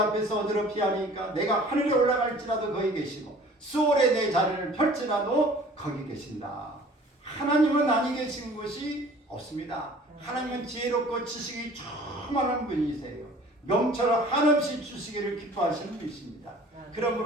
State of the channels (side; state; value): both; normal; correlation 0.49